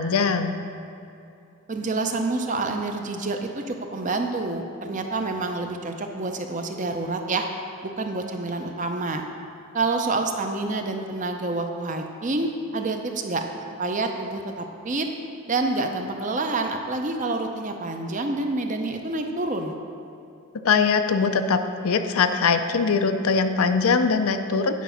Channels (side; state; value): both; normal; correlation 0.07